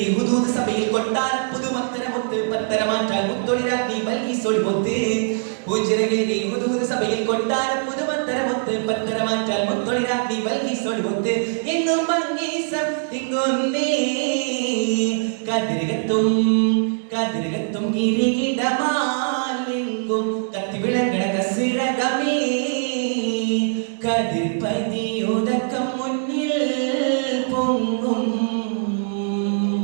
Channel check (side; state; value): left; silent; digital silence